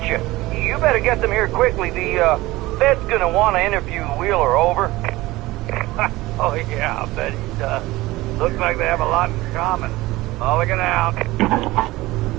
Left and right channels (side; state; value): left; quieter; 19.0 dB